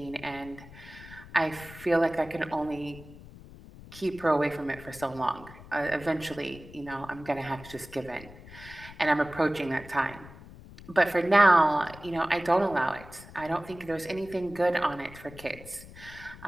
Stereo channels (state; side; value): noise; left; rumble, 18 dB below the sound